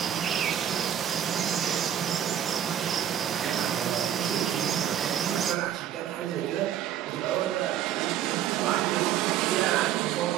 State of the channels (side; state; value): left; quieter; 10.4 dB